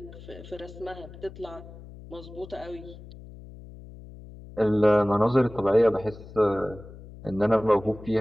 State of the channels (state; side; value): noise; left; hum, 17 dB below the sound